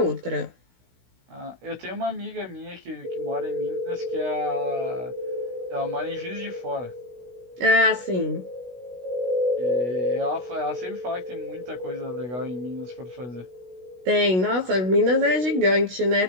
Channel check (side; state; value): left; late; 16 ms